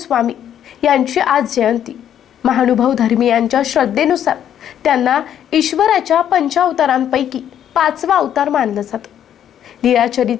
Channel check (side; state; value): right; quieter; 10.0 dB